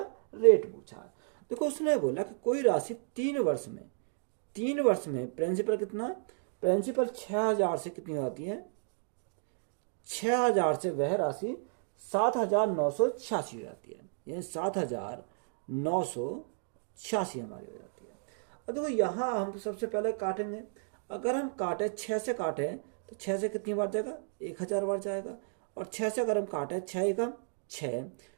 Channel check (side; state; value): left; silent; digital silence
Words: रेट पूछा। देखो उसने बोला कि कोई राशि 3 वर्ष में प्रिंसिपल कितना, प्रिंसिपल 6000 से कितनी आती है, 6000 से वह राशि 7986 हो जाती है, यानी 7986 हमारी हो जाती है। अब देखो यहाँ हम सबसे पहले काटेंगे, अगर हम काटे 6 से काटे तो 6 से कितनी बार जाएगा, 1000 बार जाएगा। और 6 से अगर हम काटे 6 एकम 6,